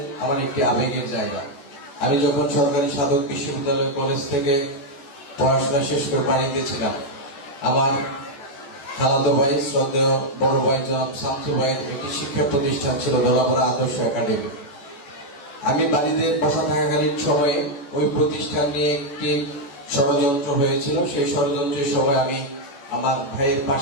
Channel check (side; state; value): right; late; 14 ms